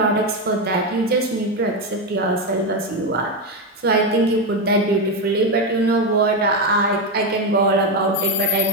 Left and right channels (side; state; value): both; normal; correlation 0.10